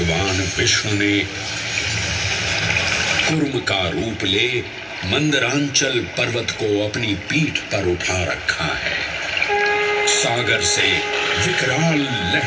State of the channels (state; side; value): identical; both; correlation 1.00